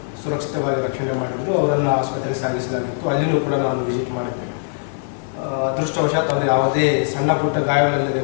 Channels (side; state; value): right; silent; digital silence